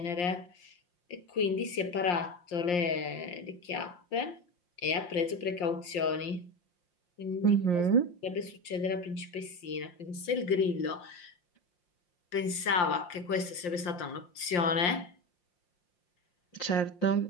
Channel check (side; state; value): right; late; 5.7 ms